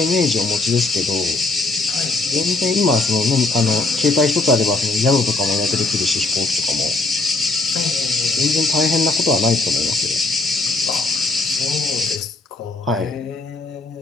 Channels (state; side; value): quieter; right; 3.3 dB